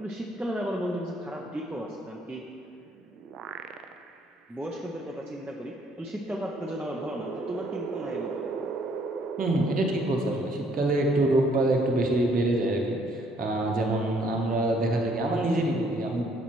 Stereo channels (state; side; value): normal; both; correlation 0.65